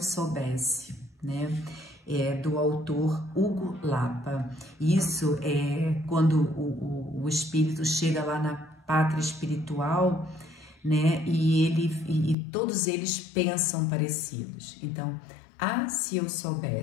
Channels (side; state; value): right; drops out; at 12.4 s